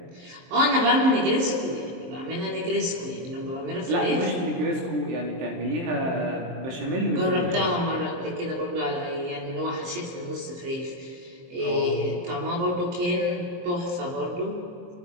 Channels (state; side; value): late; left; 23 ms